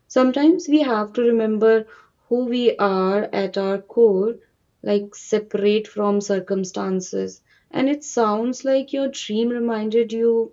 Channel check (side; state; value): both; identical; correlation 1.00